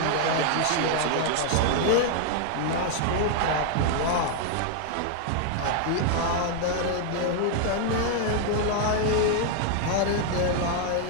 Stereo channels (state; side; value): different; both; correlation 0.00